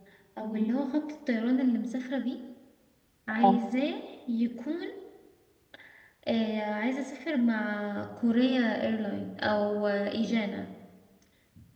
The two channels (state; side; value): identical; both; correlation 1.00